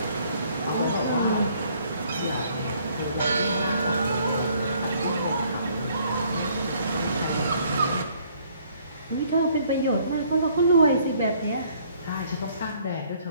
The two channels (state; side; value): inverted; both; correlation -0.63